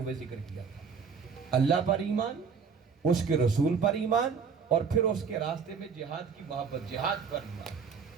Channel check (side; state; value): left; quieter; 6.0 dB